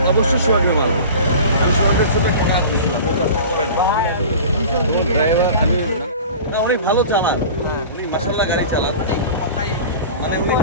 অবশ্যই সোহাগের ভালো, আমি সোহাগের সাথে খাওয়া দিয়েছিলাম, ও কাজটা করে না। ড্রাইভার আমি না, উনি ভালো চালান, উনি মাসাল্লাহ গাড়ি চালান, মানে উনি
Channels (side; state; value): both; inverted; correlation -0.38